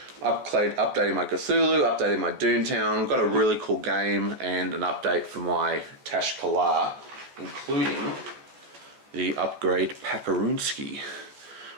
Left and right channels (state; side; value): late; left; 14 ms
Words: Updating my Cthulhu, updating my Doontown. Got a really cool game and an update for my Tashkala, including the upgrade Paparunsky,